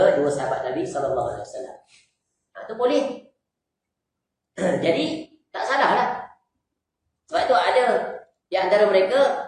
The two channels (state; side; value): identical; both; correlation 1.00